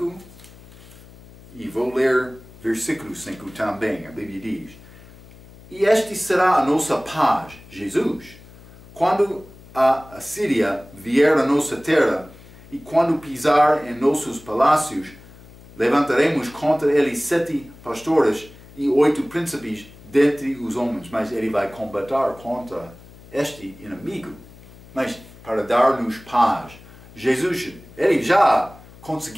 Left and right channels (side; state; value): left; noise; hum, 21 dB below the sound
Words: E vou ler versículo 5 também. A Bíblia diz: E este será a nossa paz, Jesus, quando a Assíria vier à nossa terra, e quando pisar em nossos palácios, levantaremos contra ele 7 pastores e 8 príncipes dentre os homens. Mas ele vai combater contra este inimigo, mas para dar-nos paz. Jesus, ele já